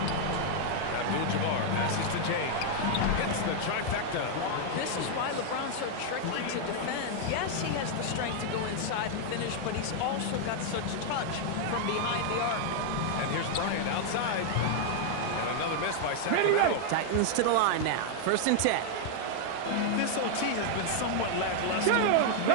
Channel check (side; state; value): both; different; correlation 0.00